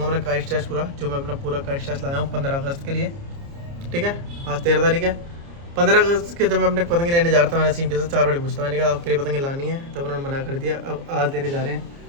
मेरा काइट स्टैश पूरा, जो मैं अपना पूरा काइट स्टैश लाया हूँ 15 अगस्त के लिए। ठीक है, आज 13 तारीख है। 15 अगस्त के जब मैं अपने पतंगे लेने जा रहा था, मैंने वसीम भैया से 4 बजे पूछता, मैंने कहा आपके लिए पतंगे लानी है, तब उन्होंने मना कर दिया। अब आज लेने जा रहे हैं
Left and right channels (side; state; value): left; late; 29 ms